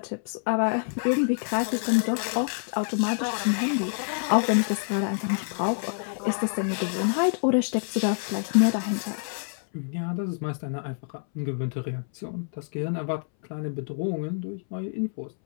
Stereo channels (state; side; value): silent; right; 60 dB below the other